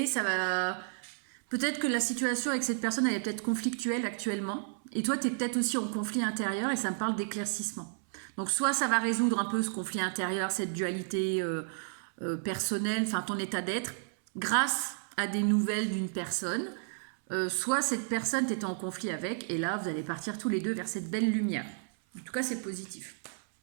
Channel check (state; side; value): silent; left; 56 dB below the other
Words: ça va... Peut-être que la situation avec cette personne, elle est peut-être conflictuelle actuellement. Et toi, tu es peut-être aussi en conflit intérieur et ça me parle d'éclaircissement. Donc soit ça va résoudre un peu ce conflit intérieur, cette dualité personnelle, enfin ton état d'être, grâce à des nouvelles d'une personne. Soit cette personne t'était en conflit avec, et là vous allez partir tous les deux vers cette belle lumière. En tout cas, c'est positif.